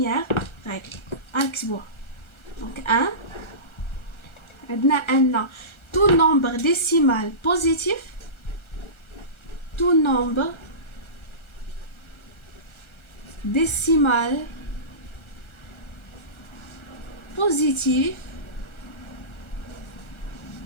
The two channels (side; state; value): right; late; 1.4 ms